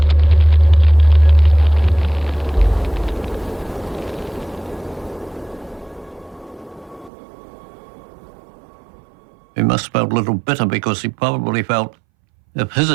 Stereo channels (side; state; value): left; drops out; at 7.1 s